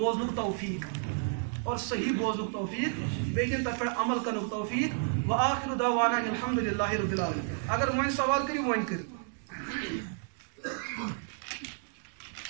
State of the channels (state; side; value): silent; left; digital silence